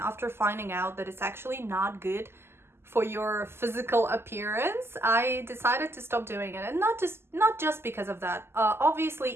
finding out that it's actually not good for your physical appearance, I decided to stop doing it. And not just because of that. Obviously,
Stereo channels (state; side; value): late; left; 0.12 ms